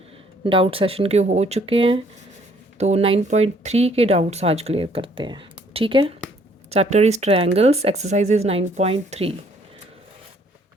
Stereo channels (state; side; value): normal; both; correlation 0.63